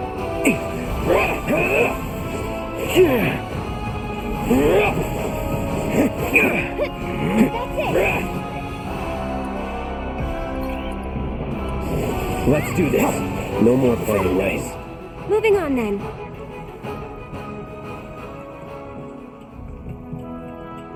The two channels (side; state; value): both; identical; correlation 1.00